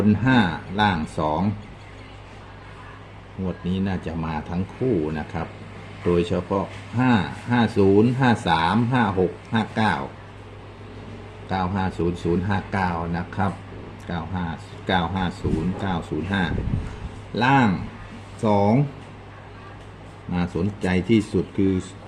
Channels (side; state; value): both; identical; correlation 1.00